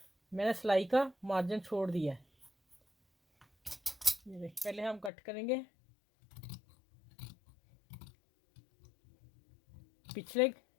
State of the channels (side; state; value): right; drops out; at 5.1 s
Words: मैंने सिलाई का मार्जिन छोड़ दिया है। ये देखिए पहले हम कट करेंगे पिछले